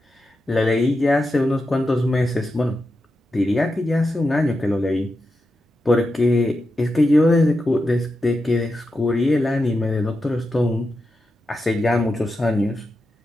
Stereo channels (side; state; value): both; normal; correlation 0.88